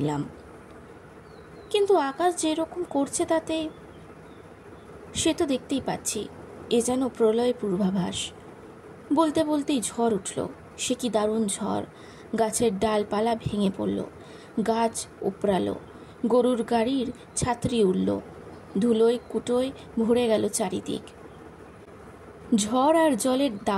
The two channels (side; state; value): both; identical; correlation 1.00